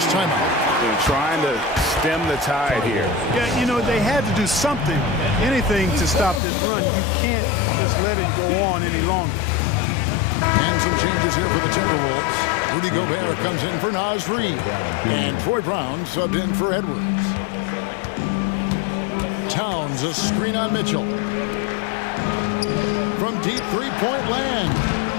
timeout. They're trying to stem the tide here. Yeah, you know, they had to do something, anything to stop this run. You can't just let it go on any longer. And some changes here for the Timberwolves. Rudy Gobert comes in for Naz Reid. And Troy Brown subbed in for Edwards. Towns, a screen on Mitchell. From deep three-point land.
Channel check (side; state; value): right; drops out; at 6.4 s